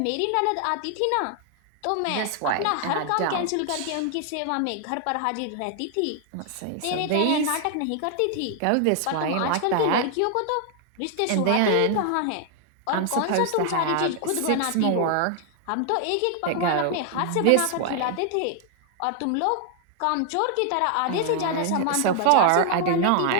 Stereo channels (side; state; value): both; different; correlation 0.00